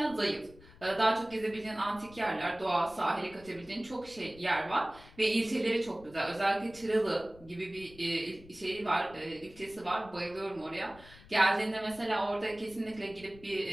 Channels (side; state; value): left; noise; rumble, 21 dB below the sound